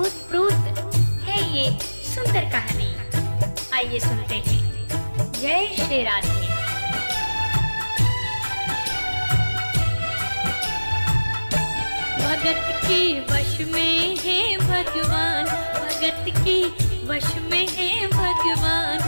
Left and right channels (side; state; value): both; inverted; correlation -1.00